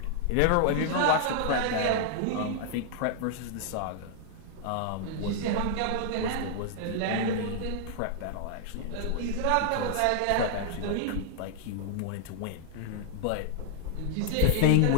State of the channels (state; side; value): different; both; correlation -0.01